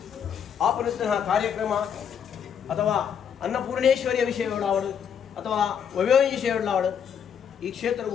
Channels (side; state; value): right; quieter; 7.9 dB